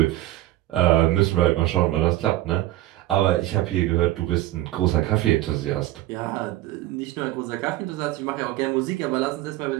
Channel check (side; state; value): left; quieter; 15.6 dB